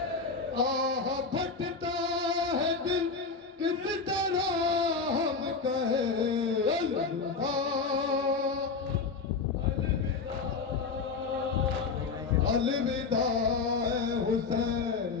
आह फटता है दिल किस तरह हम कहे अलविदा, अलविदा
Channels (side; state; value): right; quieter; 4.6 dB